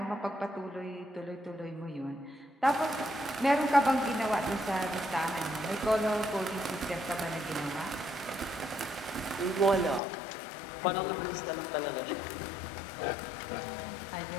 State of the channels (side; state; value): right; drops out; at 10.0 s